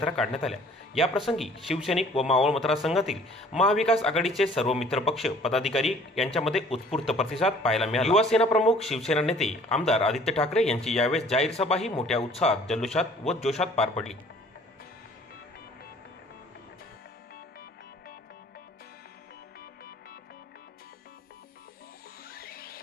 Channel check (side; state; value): both; normal; correlation 0.54